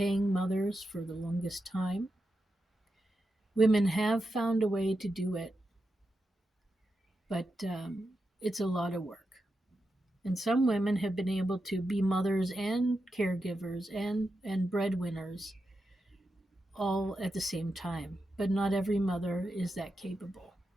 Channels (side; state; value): both; normal; correlation 0.88